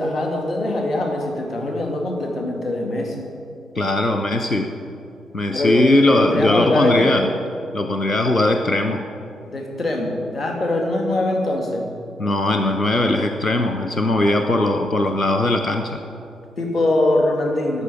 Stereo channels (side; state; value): both; normal; correlation 0.81